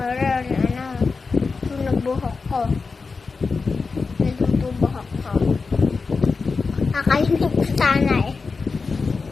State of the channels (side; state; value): right; quieter; 4.5 dB